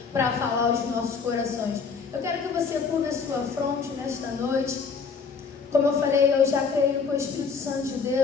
para falar aos nossos corações. Eu quero que você curva a sua fronte nesta noite. Como eu falei, eu já creio que o Espírito Santo de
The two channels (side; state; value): right; quieter; 5.4 dB